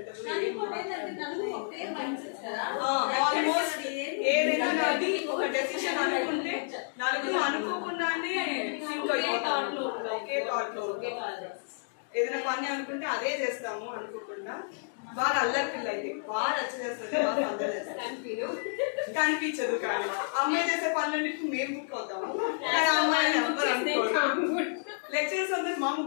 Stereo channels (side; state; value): right; silent; digital silence